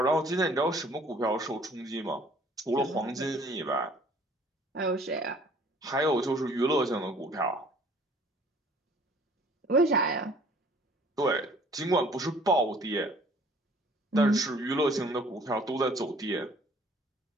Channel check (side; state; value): both; normal; correlation 0.55